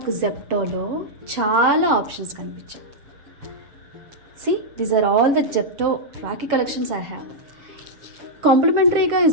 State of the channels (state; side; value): late; left; 7.1 ms